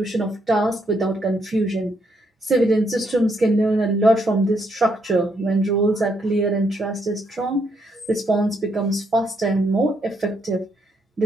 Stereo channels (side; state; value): both; normal; correlation 0.75